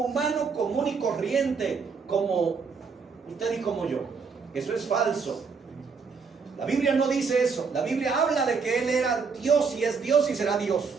común y corriente, como usted y como yo. Eso es falso. La Biblia no dice eso. La Biblia habla de que él era Dios y es Dios y será Dios.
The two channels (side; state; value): left; quieter; 5.3 dB